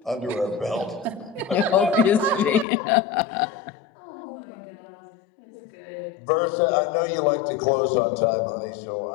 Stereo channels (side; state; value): right; drops out; at 2.7 s